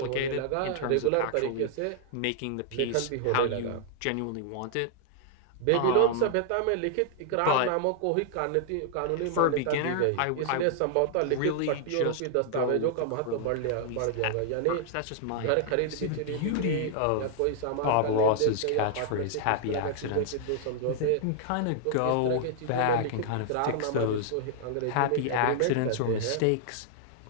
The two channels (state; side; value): different; both; correlation -0.01